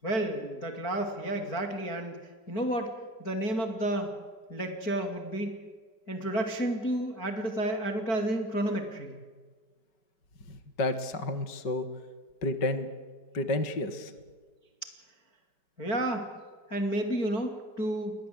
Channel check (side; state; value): right; late; 4.5 ms